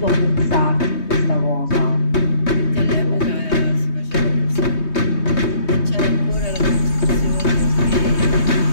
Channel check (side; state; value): right; late; 3.2 ms